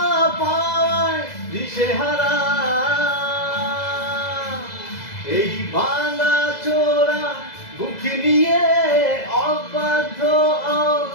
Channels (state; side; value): late; right; 2.0 ms